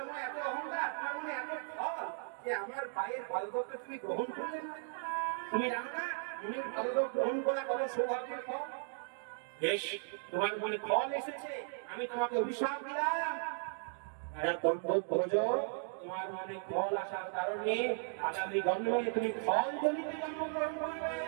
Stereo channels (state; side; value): silent; left; digital silence